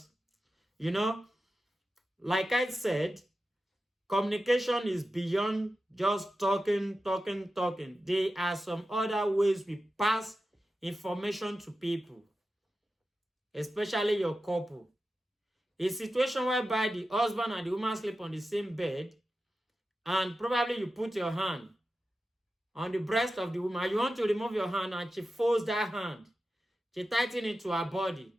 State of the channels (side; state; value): both; normal; correlation 0.92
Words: like I said, communication is beyond just talking. There are some other ways we pass information to people, especially your couple. A situation whereby the husband and the woman sleep on the same bed, and probably you put your hand on the breast of the woman. You want to remove your hand, and she folds that hand. She tightens it to her body.